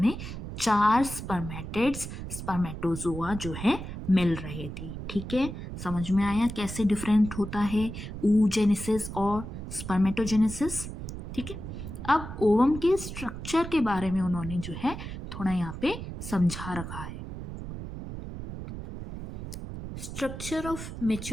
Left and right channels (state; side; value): noise; right; rumble, 8 dB below the sound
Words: 4 स्पर्मेटिड्स, स्पर्मेटोजोआ जो है मिल रहे थे। ठीक है, समझ में आया कैसे डिफरेंट होता है oogenesis और स्पर्मेटोजेनेसिस। ठीक है, अब ओवम के स्ट्रक्चर के बारे में उन्होंने जो है थोड़ा यहाँ पे समझा रखा है। स्ट्रक्चर ऑफ